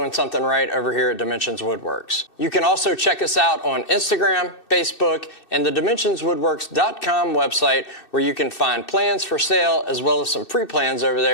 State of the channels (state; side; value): late; right; 2.6 ms